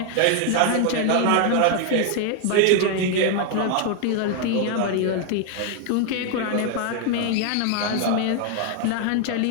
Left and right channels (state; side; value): different; both; correlation 0.00